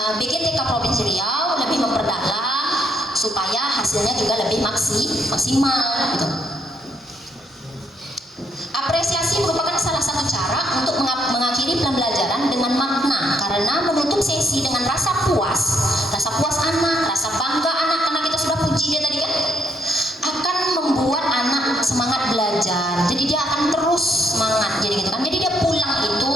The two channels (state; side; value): normal; both; correlation 0.72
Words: BGTK Provinsi Riau lebih memperdalam supaya hasilnya juga lebih maksimal gitu. Apresiasi merupakan salah satu cara untuk mengakhiri pembelajaran dengan makna, karena menutup sesi dengan rasa puas anak, rasa bangga anak karena kita sudah puji dia tadi kan, akan membuat anak semangat belajar. Jadi dia akan terus semangat jadi gitu kan. Jadi dia pulang